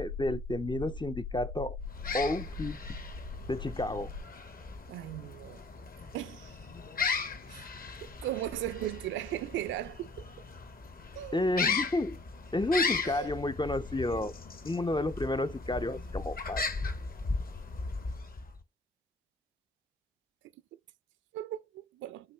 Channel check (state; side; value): normal; both; correlation 0.56